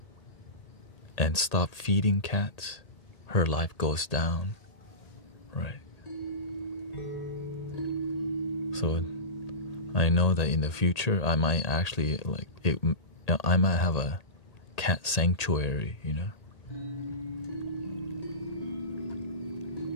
and stopped feeding cats, her life goes down, right? So I know that in the future I might actually I might have a cat sanctuary,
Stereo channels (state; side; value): late; right; 1.8 ms